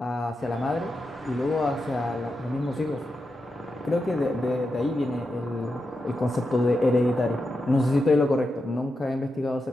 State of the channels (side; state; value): both; normal; correlation 0.88